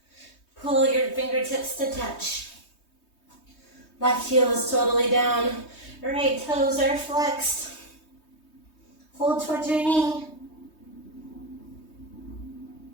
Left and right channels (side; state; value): right; late; 3.2 ms